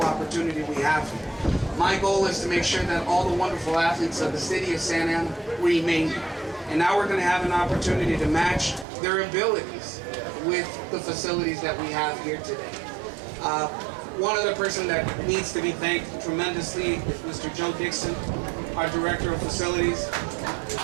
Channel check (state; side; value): drops out; left; at 8.8 s